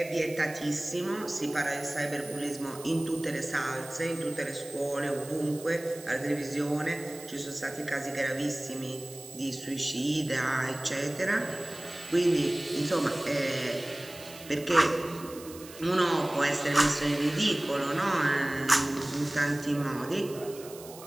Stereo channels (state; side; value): noise; right; hiss, 17 dB below the sound